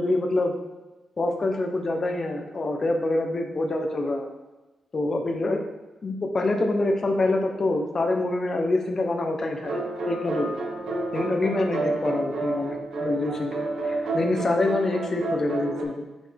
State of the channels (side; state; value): both; normal; correlation 0.88